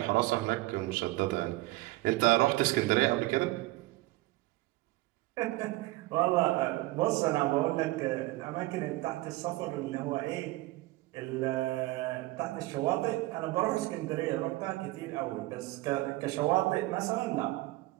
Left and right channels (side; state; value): left; quieter; 19.5 dB